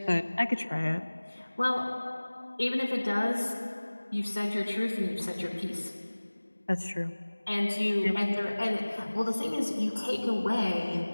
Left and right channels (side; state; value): both; inverted; correlation -1.00